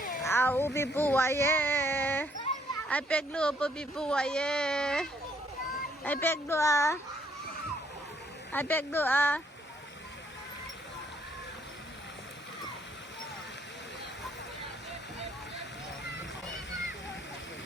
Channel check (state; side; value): normal; both; correlation 0.68